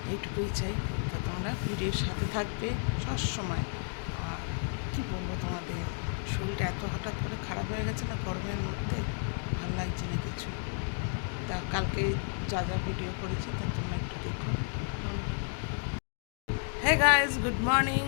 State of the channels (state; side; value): silent; right; 56 dB below the other